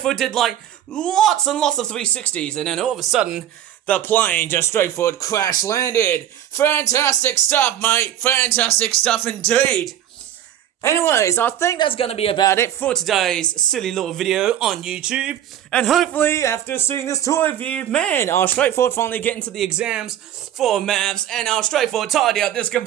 did like lots and lots of 360s, and then all of a sudden, the plane just straightforward crash landed. Fantastic stuff, mate. Fantastic stuff indeed. Anyways, I think that's going to be about it for today's silly little video on YouTube. And hopefully, after seeing this toy review, man, I'll straightforward finally get into the exams for maths, and I'll straightforward tidy up this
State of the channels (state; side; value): quieter; left; 11.1 dB